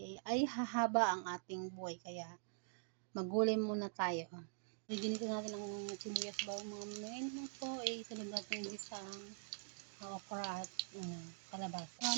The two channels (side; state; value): left; silent; digital silence